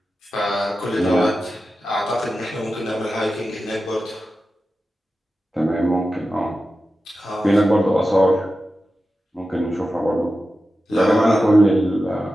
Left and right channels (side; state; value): both; normal; correlation 0.92